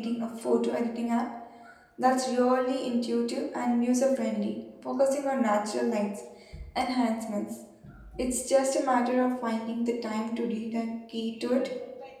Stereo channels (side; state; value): both; identical; correlation 1.00